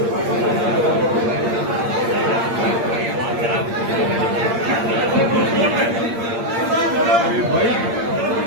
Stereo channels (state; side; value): late; left; 8.7 ms